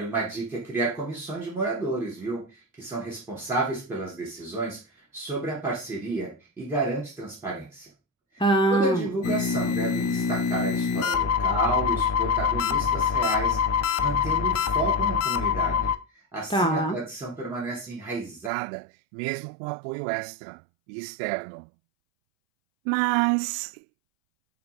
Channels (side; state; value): left; drops out; at 18.5 s